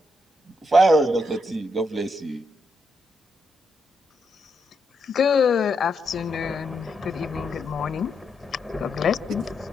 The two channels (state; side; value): normal; both; correlation 0.81